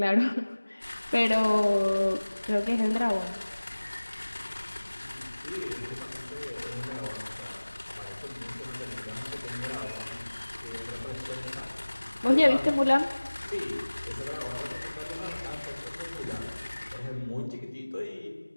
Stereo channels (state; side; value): inverted; both; correlation -1.00